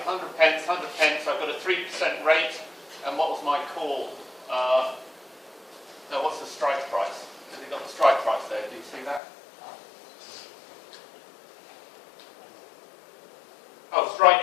100 pence, 100 pence, I've got a 3% rate, and what was my call? No, what's the strike price? Have you got the strike price there? Do you see that? Oh,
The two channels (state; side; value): drops out; right; at 9.2 s